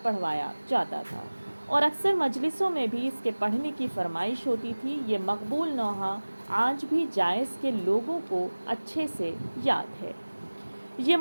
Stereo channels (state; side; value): inverted; both; correlation -1.00